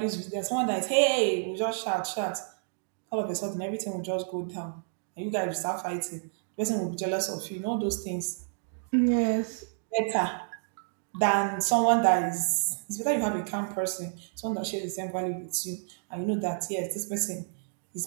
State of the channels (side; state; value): left; silent; digital silence